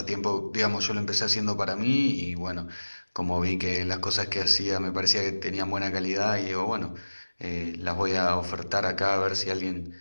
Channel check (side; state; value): both; inverted; correlation -1.00